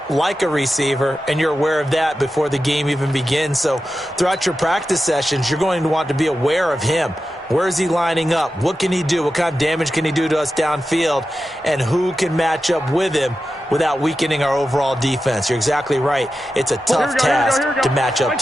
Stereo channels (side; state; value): both; normal; correlation 0.91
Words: like a receiver, and you're aware of that before the game even begins. So throughout your practice sessions, you're going to want to be aware of him. Where is he lining up? What can he do? What kind of damage can he do to us downfield? And who can match up with him without weakening our overall defense? You're exactly right. It's a tough task to match up